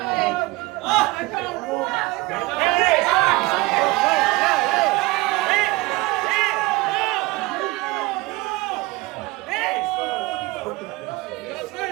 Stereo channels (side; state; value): left; quieter; 21.7 dB